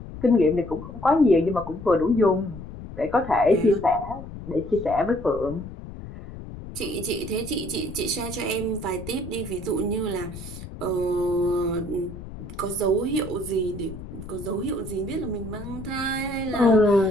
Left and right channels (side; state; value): left; noise; rumble, 12 dB below the sound